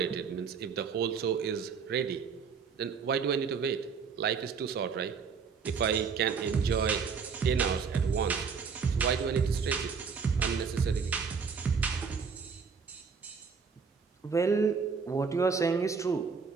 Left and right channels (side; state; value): left; quieter; 5.7 dB